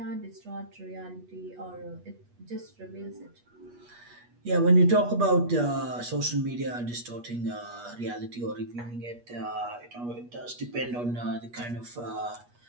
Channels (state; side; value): late; left; 8.3 ms